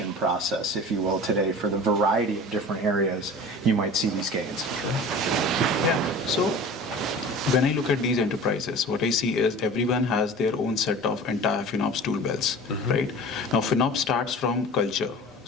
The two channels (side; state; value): both; normal; correlation 0.39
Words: process, if you will, today for the variety of different areas you might see these gains? Yeah. So when I look at these enterprises, what I see is everyone has their own set of entire FinOps tool belts, right? Now, FinOps starts from culture.